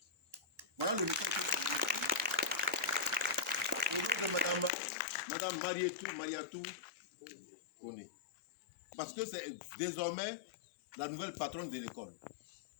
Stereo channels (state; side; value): drops out; right; at 4.7 s